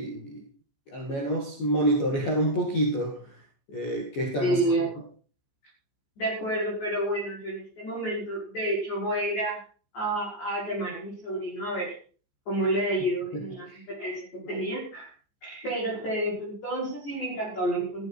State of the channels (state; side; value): late; right; 15 ms